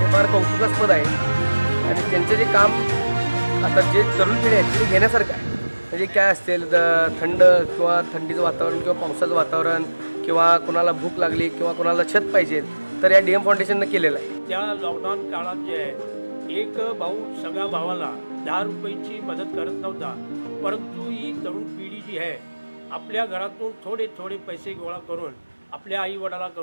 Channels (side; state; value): both; inverted; correlation -1.00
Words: फार कौतुकास्पद आहे. आणि त्यांचं जे काम आता जे तरुण पिढी आहे ते घेण्यासारखं आहे. म्हणजे काय असेल थंड किंवा थंडीचं वातावरण किंवा पावसाचं वातावरण किंवा कोणाला भूक लागली किंवा कोणाला छत पाहिजे तर या डीएम फाउंडेशननं केलेलं आहे. त्या लॉकडाऊन काळात जे आहे एक भाऊ सगळ्या भावाला 10 रुपयाची मदत करत नव्हता, परंतु ही तरुण पिढी जी आहे आपल्या घरातून थोडे थोडे पैसे गोळा करून आपल्या आईवडिला